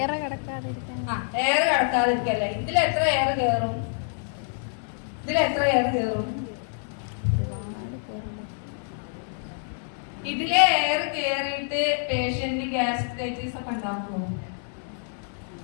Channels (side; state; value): right; silent; 60 dB below the other